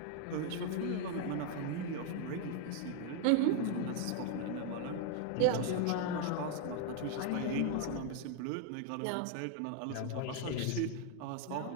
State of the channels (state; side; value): different; both; correlation 0.00